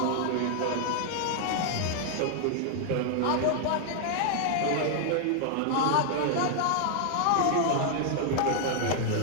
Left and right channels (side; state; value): both; different; correlation 0.00